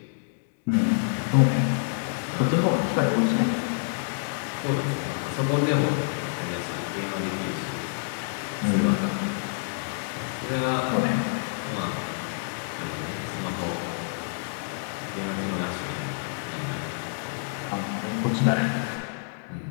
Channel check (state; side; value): silent; right; digital silence